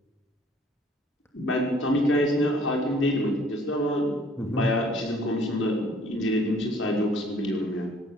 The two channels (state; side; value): normal; both; correlation 0.57